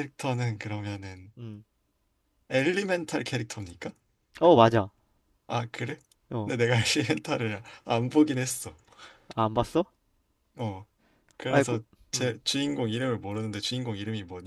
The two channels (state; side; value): identical; both; correlation 1.00